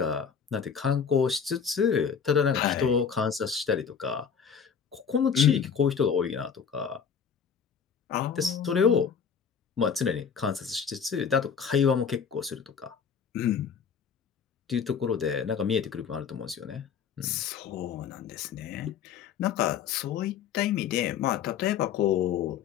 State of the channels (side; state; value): right; quieter; 6.9 dB